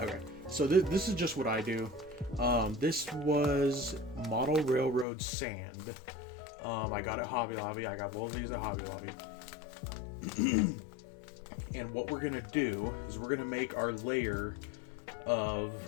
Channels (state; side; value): drops out; right; at 5.1 s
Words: so this is just what I do. This was Model Railroad sand. I got it at Hobby Lobby. I got both of these at Hobby Lobby. And what we're gonna do is we're gonna make our layer of